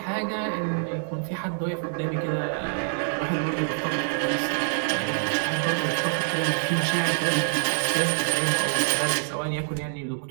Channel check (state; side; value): silent; left; digital silence